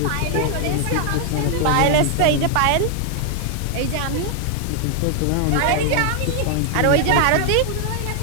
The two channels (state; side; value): different; both; correlation 0.00